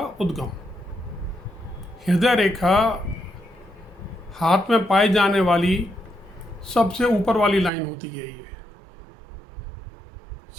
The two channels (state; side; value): drops out; left; at 7.7 s